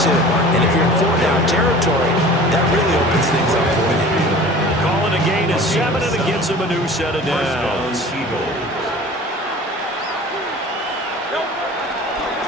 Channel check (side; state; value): both; normal; correlation 0.42